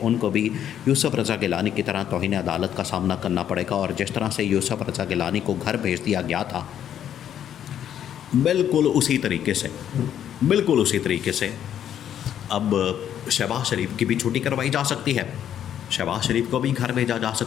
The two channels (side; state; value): right; quieter; 10.0 dB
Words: उनको भी यूसुफ रज़ा गिलानी की तरह तौहीन अदालत का सामना करना पड़ेगा। और जिस तरह से यूसुफ रज़ा गिलानी को घर भेज दिया गया था, बिल्कुल उसी तरीके से अब शहबाज शरीफ की भी छुट्टी करवाई जा सकती है, शहबाज शरीफ को भी घर भेजा जा